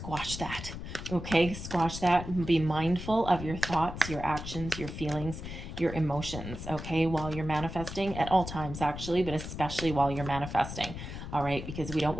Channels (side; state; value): left; noise; rumble, 9 dB below the sound